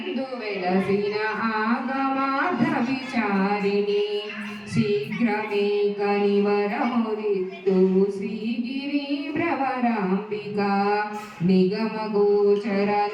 వెలసిన ఆగమార్థ విచారిణి శీఘ్రమే కనివరమురిత్తు శ్రీగిరి భ్రమరాంబిక నిగమగోచర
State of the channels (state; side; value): identical; both; correlation 1.00